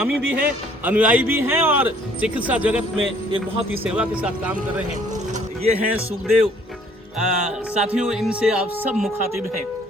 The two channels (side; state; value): both; normal; correlation 0.60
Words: भी हैं, अनुयायी भी हैं और चिकित्सा जगत में एक बहुत ही सेवा के साथ काम कर रहे हैं। ये हैं सुखदेव। साथियों, इनसे आप सब मुखातिब हैं।